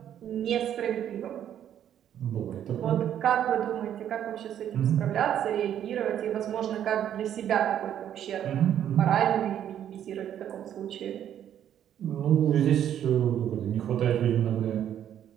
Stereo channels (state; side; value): quieter; left; 10.2 dB